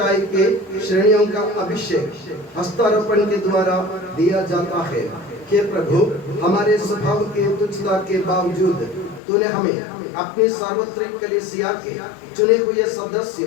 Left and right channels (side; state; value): right; drops out; at 9.2 s